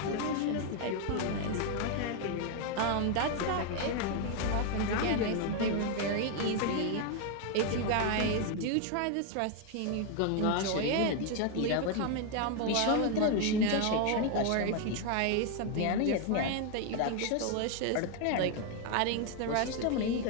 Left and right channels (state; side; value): different; both; correlation 0.01